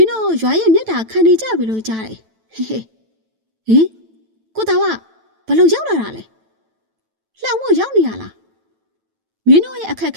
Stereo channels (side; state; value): left; late; 9.1 ms